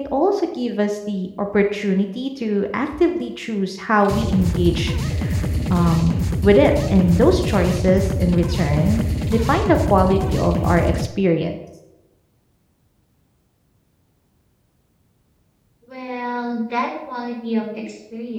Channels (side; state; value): both; identical; correlation 1.00